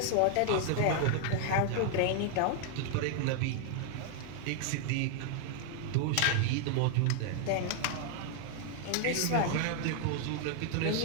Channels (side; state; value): both; different; correlation 0.00